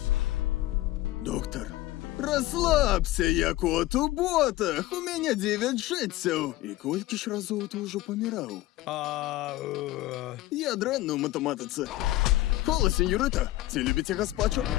Доктар, расслабься, я кот у ботах. У мяне 9 жыццяў. І колькі ж разоў ты ўжо паміраў? Я дрэнны ў матэматыцы. Хола, сеньорыта, ці любіце гаспачо?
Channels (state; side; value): quieter; right; 16.7 dB